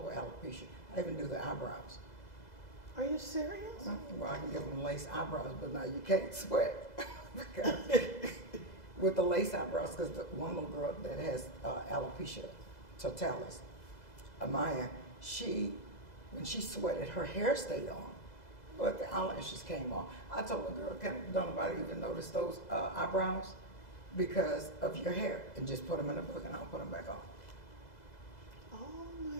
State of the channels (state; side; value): late; right; 2.0 ms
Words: alopecia. I even do the eyebrows. Are you serious? Well, I can give them lace eyebrows, but now you can't sweat. Because with the lace eyebrows, because the one little girl that has alopecia totalis, Amaya, when she sweated, her hair stayed on, but the eyelashes came off. I told the girl, don't nobody even notice those eyebrows because of your hair, and just put them in a book and I'll put them back on. Oh my